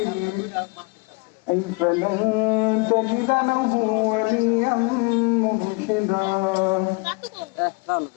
فلن تجد له وليا مرشدا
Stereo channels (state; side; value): quieter; right; 28.9 dB